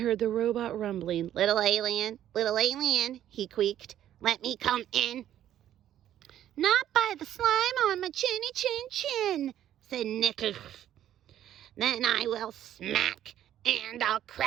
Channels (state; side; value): quieter; left; 11.5 dB